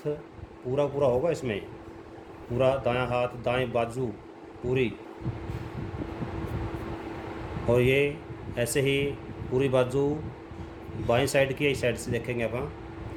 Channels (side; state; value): both; identical; correlation 1.00